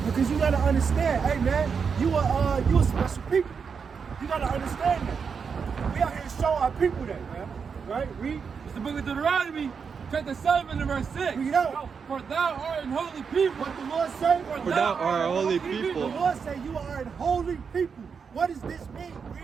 Because you gotta understand, hey man, you a special people. You gotta understand that. We out here to show our people that, man. Right? Read. It's the book of Deuteronomy, chapter 7 and verse 6. Read it out. For thou art an holy people. What the Lord say? For thou art a holy people. The Lord say you are an holy people. What does this mean?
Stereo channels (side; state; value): left; quieter; 6.0 dB